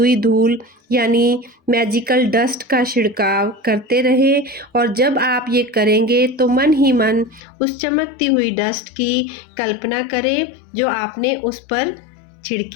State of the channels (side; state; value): right; drops out; at 7.4 s